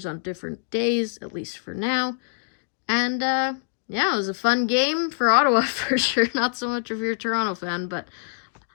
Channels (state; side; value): silent; right; digital silence